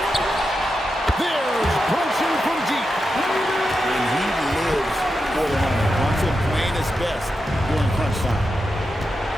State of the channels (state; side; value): normal; both; correlation 0.88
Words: There's Brunson from deep. And he lives for the moment. Brunson playing his best during crunch time.